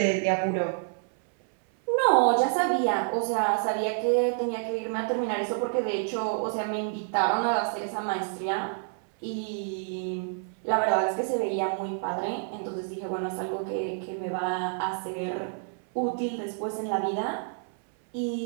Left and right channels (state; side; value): silent; left; 59 dB below the other